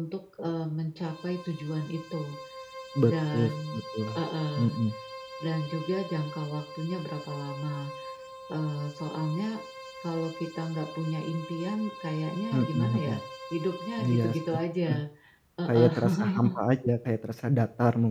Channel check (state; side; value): identical; both; correlation 1.00